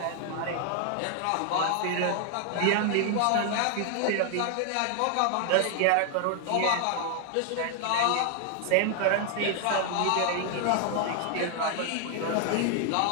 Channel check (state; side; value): different; both; correlation 0.00